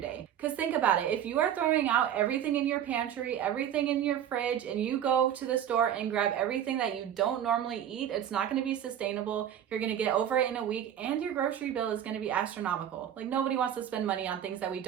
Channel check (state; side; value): quieter; left; 10.1 dB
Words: day. Because think about it, if you are throwing out everything in your pantry, everything in your fridge, and you go to the store and grab everything that you don't normally eat, it's not going to be sustainable. You're going to get over it in a week and your grocery bill is going to be astronomical. Like nobody wants to spend money on things that we